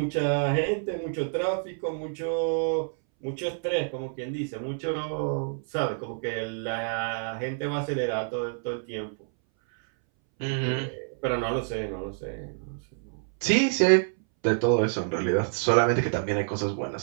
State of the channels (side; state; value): left; silent; 59 dB below the other